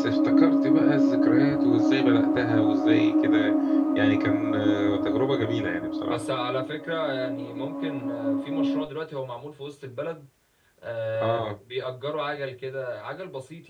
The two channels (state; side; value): identical; both; correlation 1.00